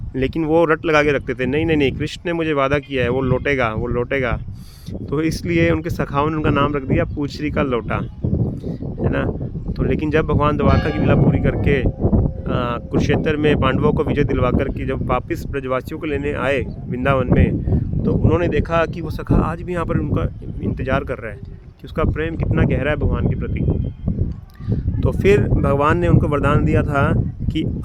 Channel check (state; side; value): identical; both; correlation 1.00